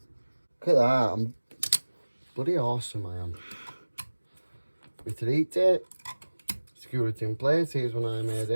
Look at that, I'm bloody awesome I am. With the heat tape, security in place, here's one I made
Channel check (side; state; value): both; inverted; correlation -1.00